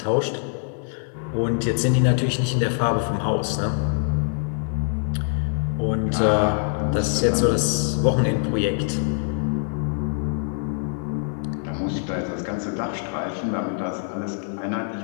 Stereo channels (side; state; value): right; silent; 63 dB below the other